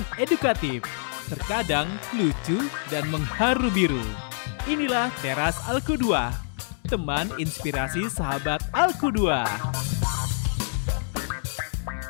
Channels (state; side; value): silent; right; 61 dB below the other